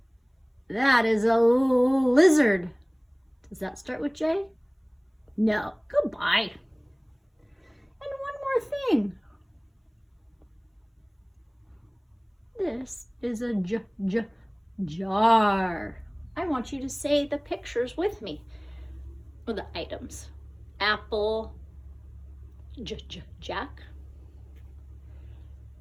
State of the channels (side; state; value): both; identical; correlation 1.00